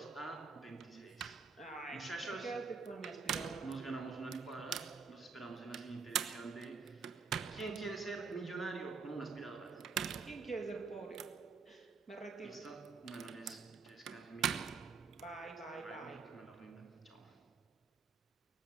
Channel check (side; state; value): left; quieter; 5.3 dB